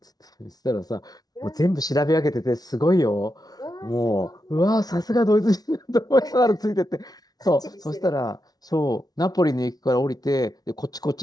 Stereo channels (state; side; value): late; right; 0.19 ms